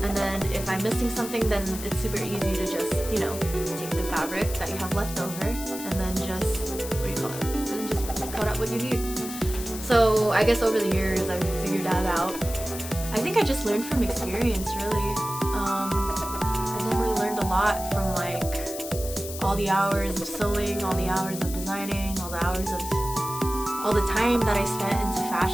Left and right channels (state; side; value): noise; left; hiss, 10 dB below the sound